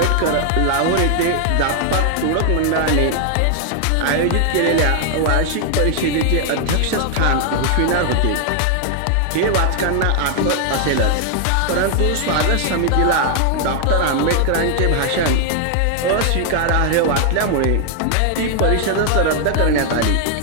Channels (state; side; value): different; both; correlation 0.00